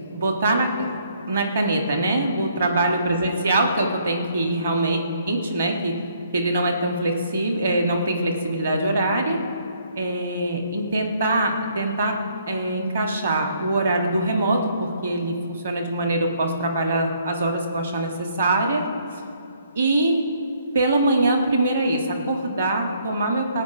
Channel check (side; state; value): both; inverted; correlation -0.67